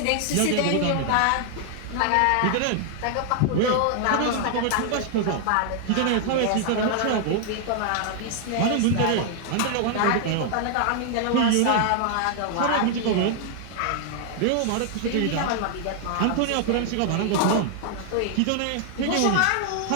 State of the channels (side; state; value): both; different; correlation 0.00